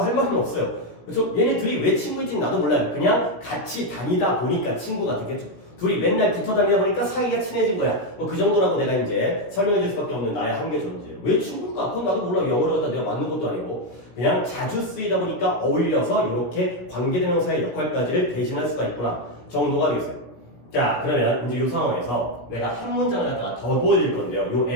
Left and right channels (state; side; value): late; right; 17 ms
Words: 할 말은 없어요. 그렇죠? 얘네 둘이 왜 친구인지는 나도 몰라요. 그냥 같이 다니다 보니까 친구가 되겠죠. 둘이 맨날 붙어 다니다 보니까 사이가 친해진 거야. 뭐 그 정도라고 내가 이제 설명해 줄 수밖에 없는 나의 한계 존재. 왜 친구일까? 그건 나도 몰라. 영어를 갖다 내가 맞는 것도 아니고 그냥 자주 쓰이다 보니까 어울려서 이렇게 관계대명사의 역할까지를 대신할 수가 있구나 정도가 되겠어요. 자, 그러면 이제 이 상황에서 내가 한 문장을 갖다가 더 보여드릴 건데요. 요